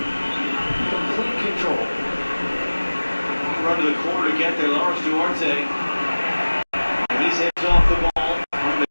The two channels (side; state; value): both; inverted; correlation -1.00